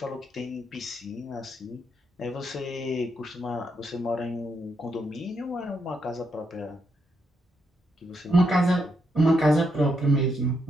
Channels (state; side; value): normal; both; correlation 0.79